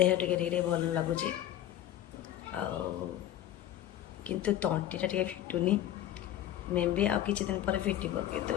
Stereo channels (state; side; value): quieter; right; 12.2 dB